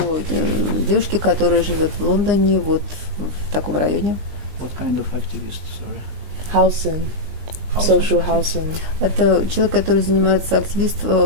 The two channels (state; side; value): late; left; 20 ms